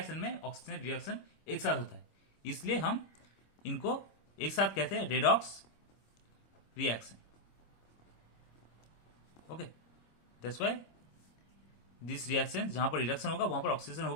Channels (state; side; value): late; right; 25 ms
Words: में ऑक्सीजन रिएक्शन एक साथ होता है, इसलिए हम इनको एक साथ कहते हैं redox reaction. Okay, that's why this reaction जहां पर रिडक्शन होगा वहां पर ऑक्सीजन